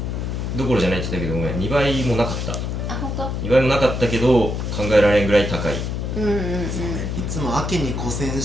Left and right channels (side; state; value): left; noise; hum, 3 dB below the sound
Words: どころじゃないって言ったけど、ごめん、2倍もなかった。あ、本当2倍もなかったけど考えられんぐらい高い。そうね、いつも秋に古銭